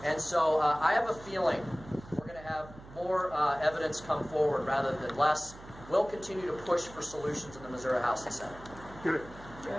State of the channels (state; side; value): noise; right; hum, 17 dB below the sound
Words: And so I have a feeling we're going to have more evidence come forward rather than less. We'll continue to push for solutions in the Missouri House and Senate.